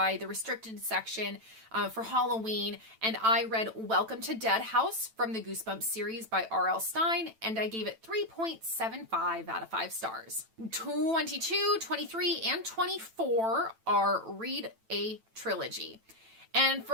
the restricted section for Halloween, and I read Welcome to Dead House from the Goosebumps series by R.L. Stine, and I gave it 3.75 out of 5 stars. 22, 23, and 24 are read a trilogy. And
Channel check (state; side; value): late; left; 9.0 ms